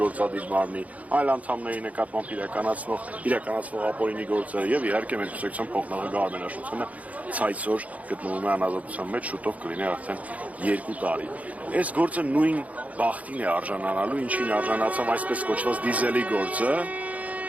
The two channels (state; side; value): late; left; 0.070 ms